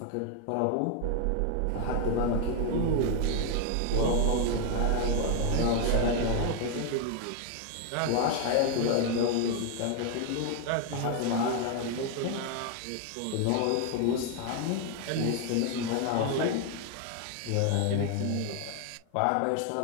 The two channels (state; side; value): different; both; correlation 0.01